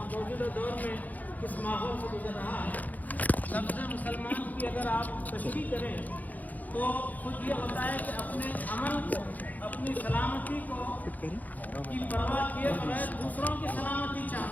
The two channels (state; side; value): late; right; 0.080 ms